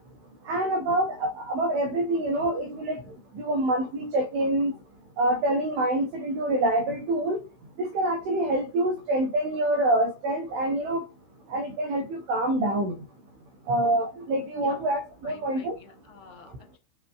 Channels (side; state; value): left; late; 16 ms